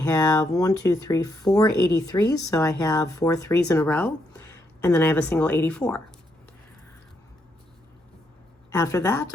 4 83s, so I have 4 3s in a row, and then I have a single 84. After that,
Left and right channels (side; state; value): both; normal; correlation 0.77